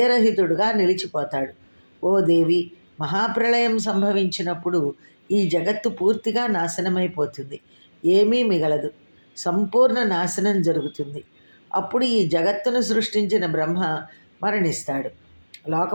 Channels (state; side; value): inverted; both; correlation -1.00